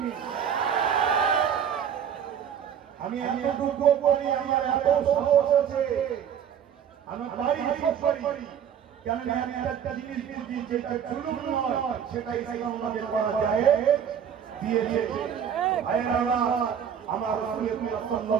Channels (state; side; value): quieter; left; 8.4 dB